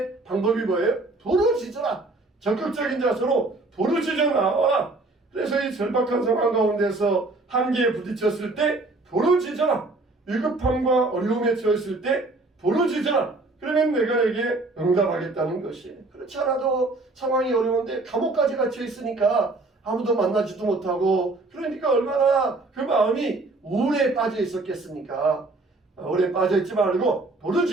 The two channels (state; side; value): quieter; left; 3.2 dB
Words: 방법이 뭐예요? 부르짖어라. 적극적인 자세로 부르짖어 나와라. 그래서 이 절박한 상황 가운데서 한계에 부딪혔을 때 부르짖어라. 위급함과 어려움에 처했을 때 부르짖어라. 그러면 내가 에게 응답하겠다는 것이에요. 그렇지 않아도 상황이 어려운데 감옥까지 갇혀 있으니까 아무도 만나지도 못하고, 그러니까 얼마나 그 마음이 우울에 빠져 있었겠습니까? 우울에 빠져 있지 말고